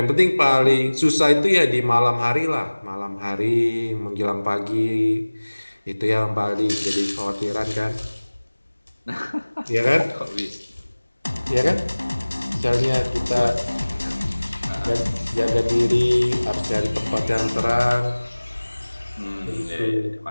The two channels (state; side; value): inverted; both; correlation -1.00